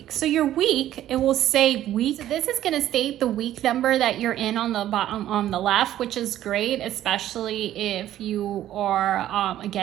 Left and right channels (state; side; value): quieter; left; 12.7 dB